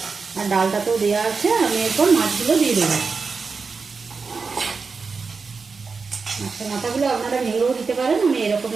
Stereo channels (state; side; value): quieter; left; 4.8 dB